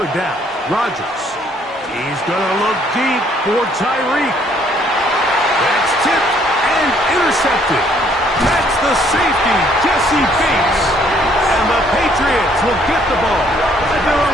down, Rodgers. He's going to look deep for Tyreek. That's tipped and intercepted. That's the safety, Jesse Bates. And the Patriots will get the ball at their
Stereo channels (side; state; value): both; normal; correlation 0.64